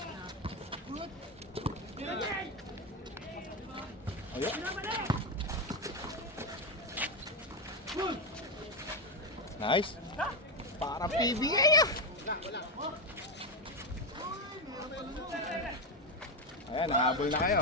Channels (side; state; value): both; normal; correlation 0.10